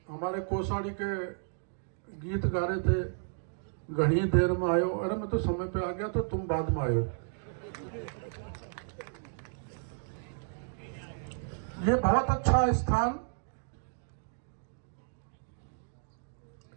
हमारे कोसाड़ी के गीत गा रहे थे, घनी देर में आयो। अरे मैं तो समय पे आ गया, तो तुम बाद में आयो। ये बहुत अच्छा स्थान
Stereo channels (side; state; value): left; silent; digital silence